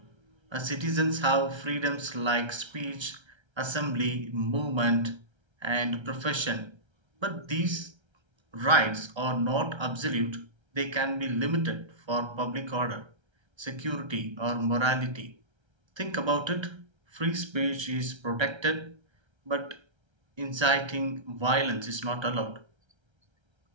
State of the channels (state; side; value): late; left; 1.3 ms